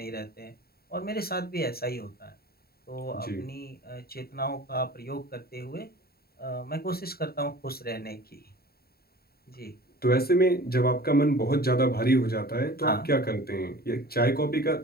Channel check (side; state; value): right; late; 0.45 ms